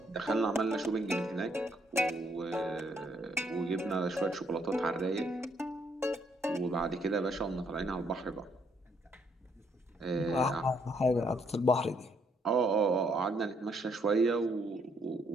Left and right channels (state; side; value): normal; both; correlation 0.70